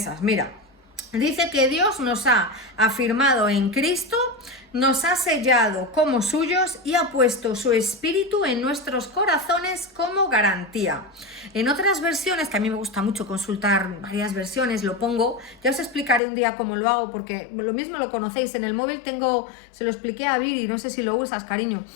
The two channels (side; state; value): right; drops out; at 16.2 s